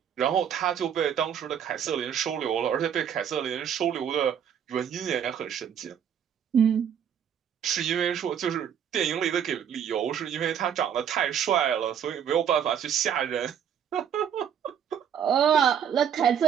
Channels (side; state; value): left; quieter; 8.6 dB